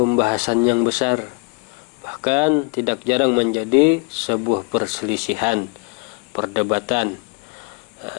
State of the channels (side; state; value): right; quieter; 29.7 dB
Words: yang besar, bahkan tidak jarang menjadi sebuah perselisihan, perdebatan,